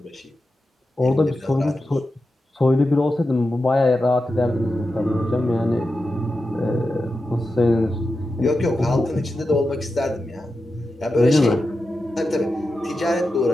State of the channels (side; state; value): both; normal; correlation 0.90